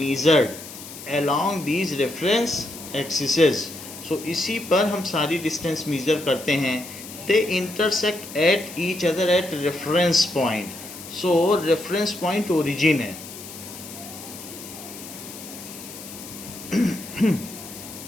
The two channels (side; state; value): left; noise; hiss, 13 dB below the sound